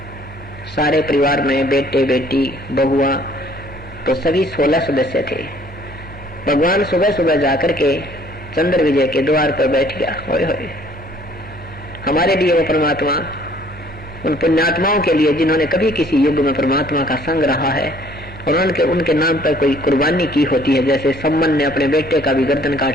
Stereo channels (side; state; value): both; normal; correlation 0.58